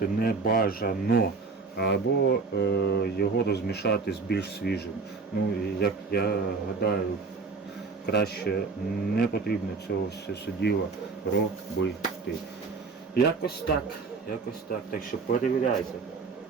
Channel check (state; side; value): quieter; left; 4.5 dB